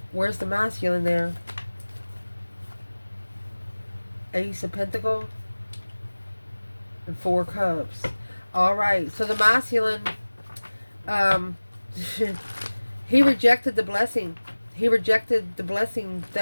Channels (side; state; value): both; inverted; correlation -1.00